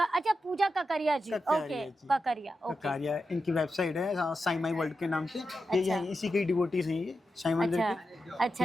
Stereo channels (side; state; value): both; normal; correlation 0.89